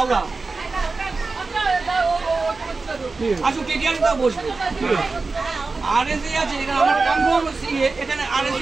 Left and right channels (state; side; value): quieter; left; 3.9 dB